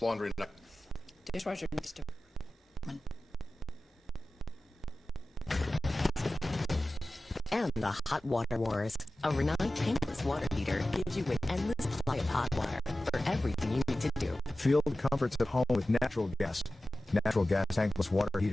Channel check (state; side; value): normal; both; correlation 0.96